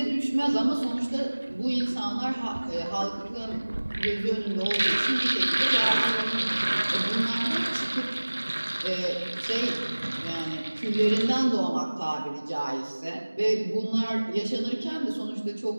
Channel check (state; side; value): inverted; both; correlation -1.00